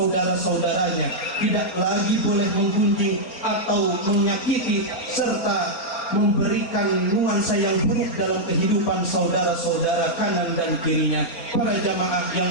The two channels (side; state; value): right; late; 4.3 ms